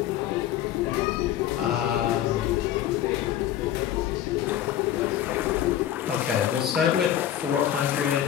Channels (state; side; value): quieter; right; 11.4 dB